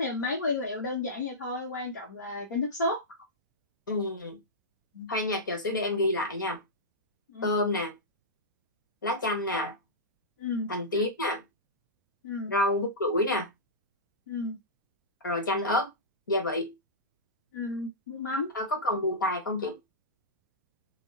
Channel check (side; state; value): both; normal; correlation -0.13